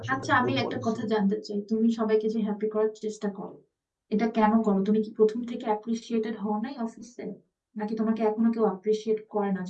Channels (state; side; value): identical; both; correlation 1.00